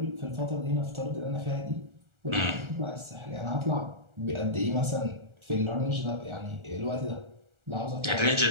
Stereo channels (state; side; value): late; left; 1.4 ms